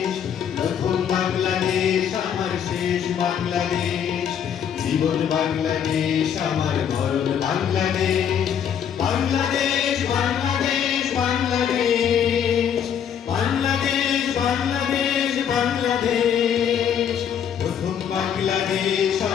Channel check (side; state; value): right; quieter; 8.5 dB